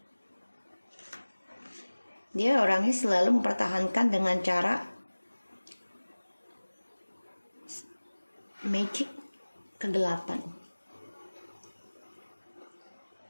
Dia orangnya selalu mempertahankan dengan cara magic kegelapan.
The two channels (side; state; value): both; inverted; correlation -1.00